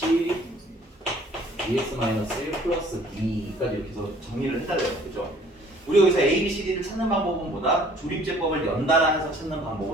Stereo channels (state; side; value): normal; both; correlation 0.56